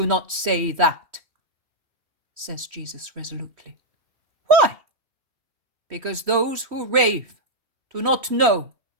not say that,'" says Jesus resolutely. "Why? Because those who rave do not know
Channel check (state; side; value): late; left; 3.2 ms